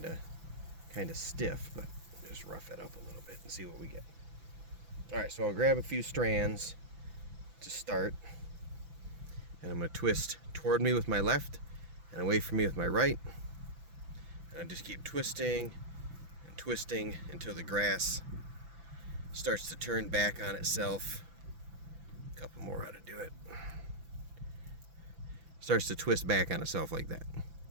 of stiff, but just rough it up a little bit and see what we get. All right, so I'll grab a few strands to start, and I'm going to twist toward me with my left and away from me with my right, and I just keep twisting and twisting until the grass starts to turn back on itself. A couple more how to do it. Starts to twist back on itself like that.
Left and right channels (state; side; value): late; left; 6.0 ms